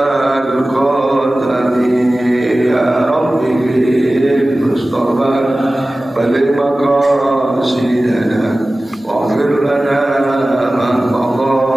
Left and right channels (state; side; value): normal; both; correlation 0.97